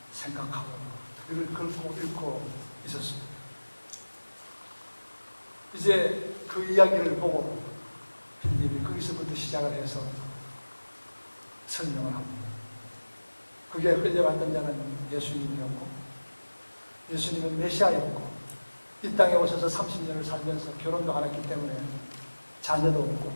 생각하고 이를 읽고 있었습니다. 이제 그 이야기를 보고 빌립이 거기서부터 시작을 해서 설명을 합니다. 그게 끌려갔던 자는 예수님이었고 예수님은 메시아였고 이 땅에 오셔서 30년을 살면서 결혼도 안 했기 때문에 자녀도 없고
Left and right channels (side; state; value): both; inverted; correlation -1.00